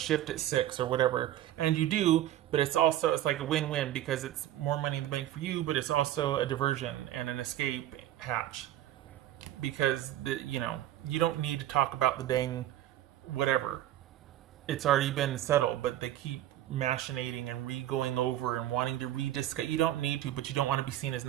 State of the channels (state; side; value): quieter; left; 13.2 dB